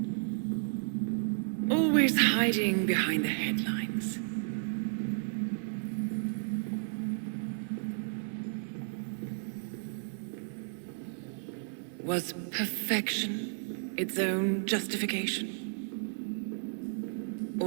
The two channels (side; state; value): left; silent; digital silence